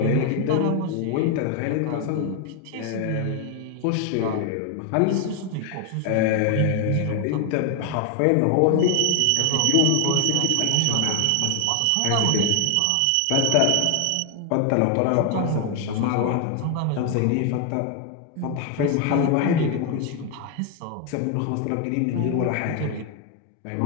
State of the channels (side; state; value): both; different; correlation 0.01